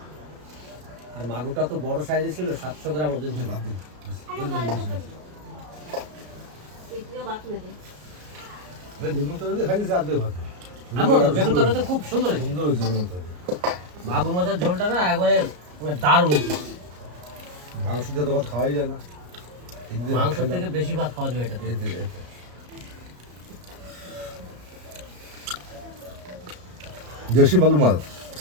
আর মাগুরটা তো বড় সাইজে ছিল, 700 গ্রাম ওজন ছিল। তিতলিও ভাত নেবে। ভাই বেগুন তরকারি দিয়ে খাইছি আর্ধেক ভাত। আমিও তো বেগুন তরকারি তো খুব সুন্দর হয়েছে। সুন্দর হয়েছে বেগুন তরকারি। মাগুর মাছের ঝোলটা না একবারে মানে দারুণ হয়েছে। মাংস দিয়ে তো ভাত খাওয়াই যায় না। এই দিয়ে ভাত মাংস খাইলাম। থেকে বেশি ভাত খাওয়া যাবে এটাতে। এতে। দেশি মাগুর মাছ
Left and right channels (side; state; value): left; late; 34 ms